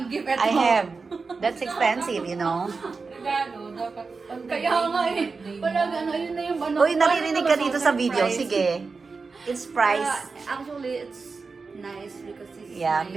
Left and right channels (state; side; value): quieter; left; 4.4 dB